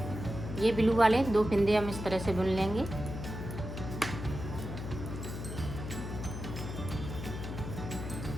ये ब्लू वाले 2 फंदे हम इस तरह से बुन लेंगे।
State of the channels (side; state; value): left; noise; hum, 7 dB below the sound